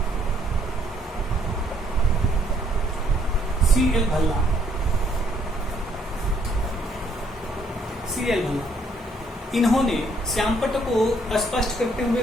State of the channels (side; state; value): both; normal; correlation 0.67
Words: C.L. भल्ला। इन्होंने श्यामपट्ट को स्पष्ट करते हुए